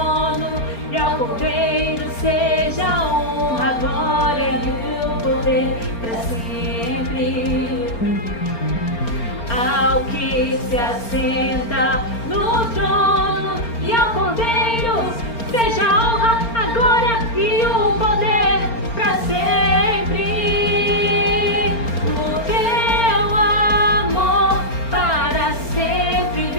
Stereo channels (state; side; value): late; right; 4.3 ms